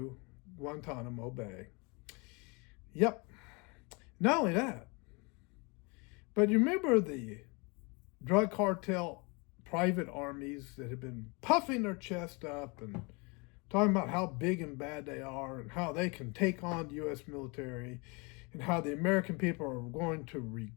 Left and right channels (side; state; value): right; quieter; 30.0 dB